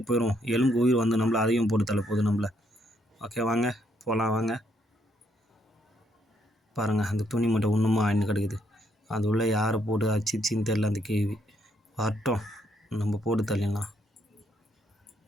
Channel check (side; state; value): both; normal; correlation 0.72